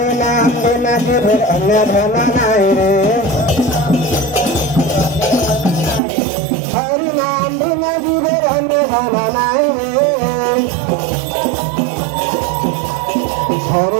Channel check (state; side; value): drops out; left; at 6.0 s